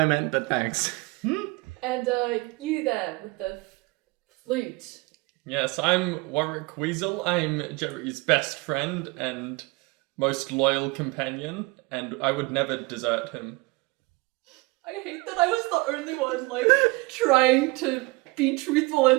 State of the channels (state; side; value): quieter; left; 24.9 dB